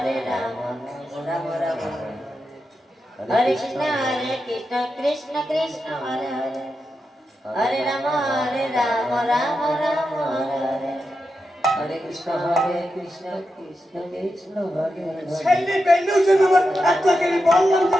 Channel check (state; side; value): normal; both; correlation 0.88